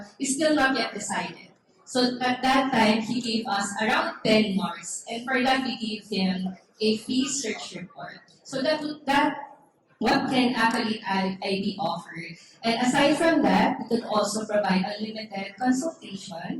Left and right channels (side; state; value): both; identical; correlation 1.00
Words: it's still not yet decided. So at that time, he gave us around 10 marks, and for that we gave him a free search report. So that what can Accolade ID offer? And aside from that, we could also provide unlimited